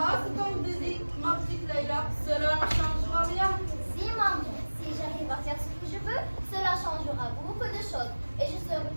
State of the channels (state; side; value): inverted; both; correlation -1.00